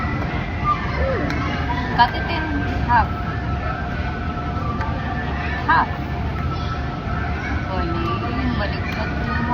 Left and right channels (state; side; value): identical; both; correlation 1.00